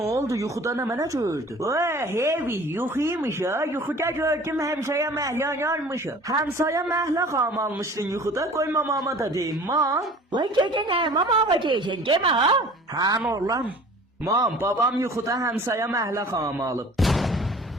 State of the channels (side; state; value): both; normal; correlation 0.46